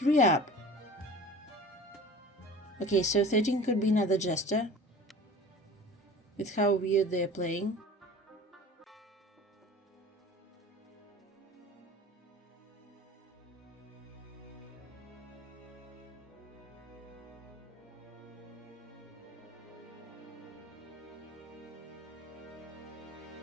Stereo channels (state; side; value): normal; both; correlation 0.41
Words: up. Okay, so 13 could be another jester, with how weird they're playing.